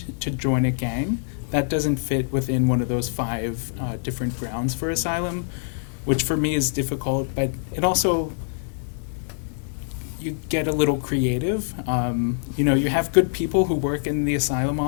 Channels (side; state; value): right; silent; digital silence